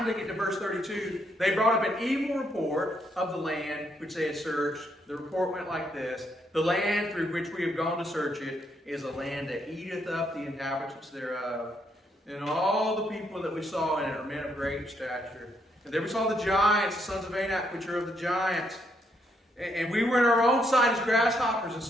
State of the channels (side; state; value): both; normal; correlation 0.75